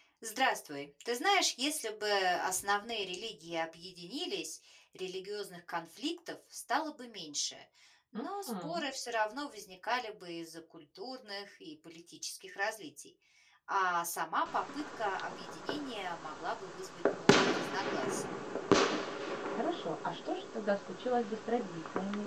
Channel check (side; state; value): both; identical; correlation 1.00